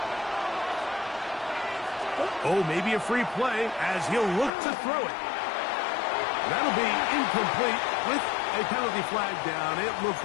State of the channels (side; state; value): right; drops out; at 4.5 s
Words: Oh, maybe a free play as he'll look to throw it. That'll be incomplete with a penalty flag down. It looked